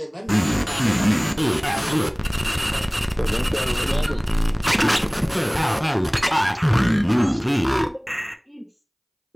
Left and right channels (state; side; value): identical; both; correlation 1.00